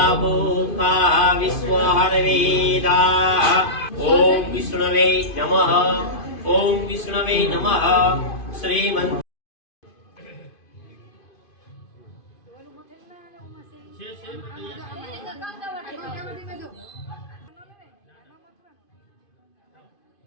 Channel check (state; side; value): late; right; 2.5 ms